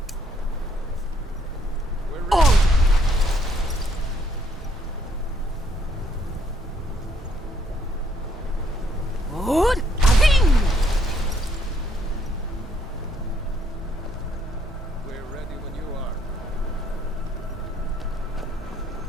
We're ready when you are.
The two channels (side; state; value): both; normal; correlation 0.69